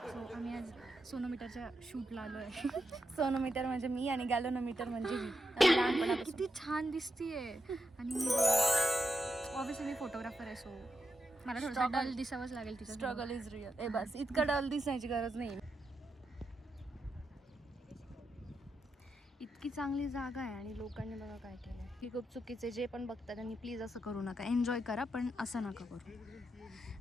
सो आम्ही आज सोनोमीटरच्या शूटला आलो आहे. सोनोमीटर म्हणजे मी आणि गॅलोनोमीटर म्हणजे मी. लहानपणापासून किती छान दिसतीये. आणि ऑब्विसली मी फोटोग्राफर आहे, सो मला थोडं डल दिसावंच लागेल तिचं. Struggle is real. बस इतकं डल दिसायची गरज नाही. इतकी चांगली जागा आहे आणि लोकांनी बघा काय केलं. ही खूप चुकीचे जे पण बघतात त्यांनी प्लीज असं करू नका. एन्जॉय करा पण असं नका करू.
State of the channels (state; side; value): normal; both; correlation 0.86